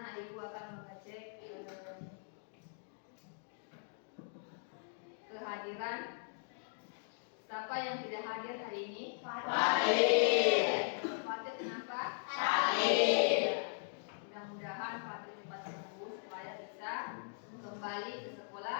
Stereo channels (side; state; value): right; silent; digital silence